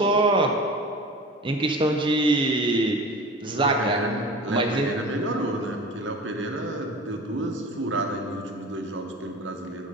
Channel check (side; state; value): both; normal; correlation 0.36